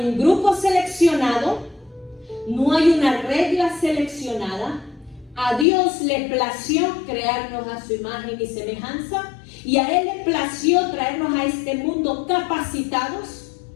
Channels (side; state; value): right; drops out; at 5.7 s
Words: un grupo seleccionado, no hay una regla seleccionada. A Dios le plació crearnos a su imagen y semejanza, y a Él le plació traernos a este mundo capacitados